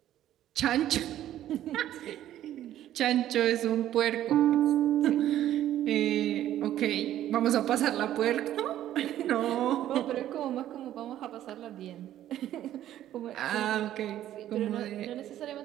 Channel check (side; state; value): left; quieter; 12.4 dB